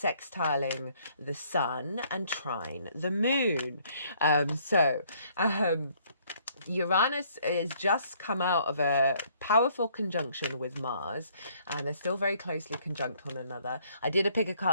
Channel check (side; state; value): both; inverted; correlation -0.64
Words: the sun and trine the moon. Uranus is just come out of a powerful conjunction with Mars, and they're still very closely conjunct one another. I did a pick a